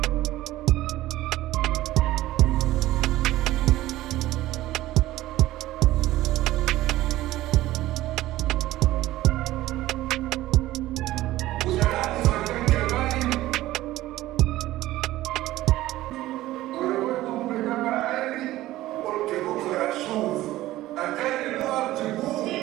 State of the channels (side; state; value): left; quieter; 16.0 dB